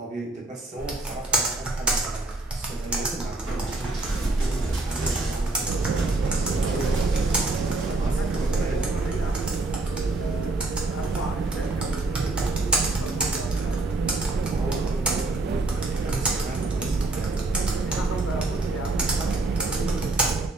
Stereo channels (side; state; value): left; quieter; 3.0 dB